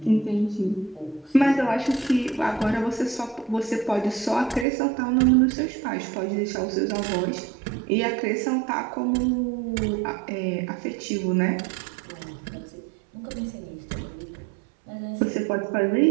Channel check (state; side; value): drops out; left; at 4.7 s